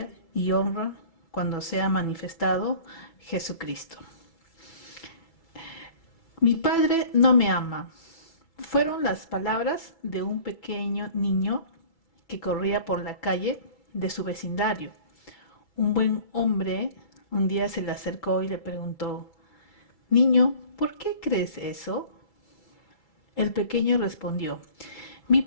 y honra cuando sea manifestado Jesucristo. Mi padre no me ama. Fueron las palabras de un pequeño niño que corría por la calle de su vecindario. Un buen hombre un día se le acercó y le preguntó: Niño, ¿por qué crees eso? El pequeño respondió: Mi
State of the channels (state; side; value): late; right; 6.0 ms